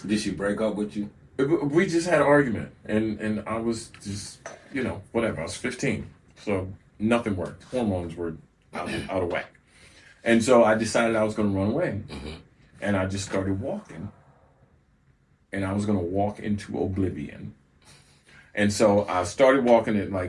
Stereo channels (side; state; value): both; identical; correlation 1.00